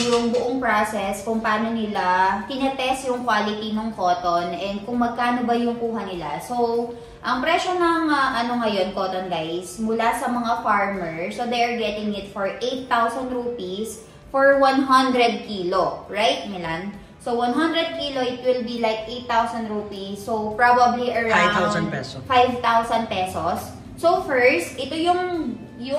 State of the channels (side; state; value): both; identical; correlation 1.00